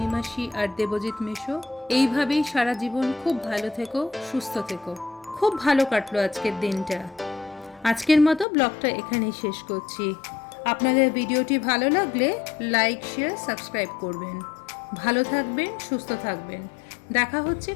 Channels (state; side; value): drops out; right; at 8.5 s